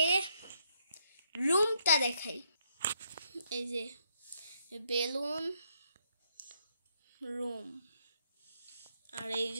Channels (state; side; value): inverted; both; correlation -0.75